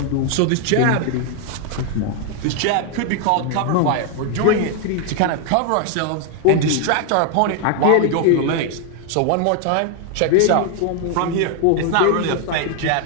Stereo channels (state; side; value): different; both; correlation 0.00